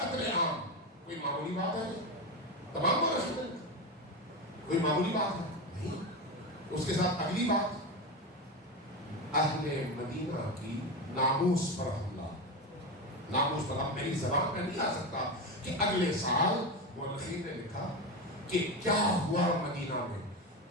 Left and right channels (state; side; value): normal; both; correlation 0.18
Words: عام کوئی معمولی بات ہے؟ تمام کو رسول کوئی معمولی بات ہے نہیں. اس کے ساتھ اگلی بات, اہل مدینہ کی ناموس پر حملہ. ناموس پر, اب میری زبان میں نہیں آ سکتا کہ اگلے سال مورخین نے لکھا کہ کیا ہوا مدینہ میں.